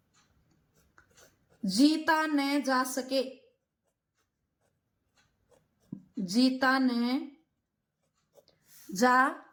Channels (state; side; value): identical; both; correlation 1.00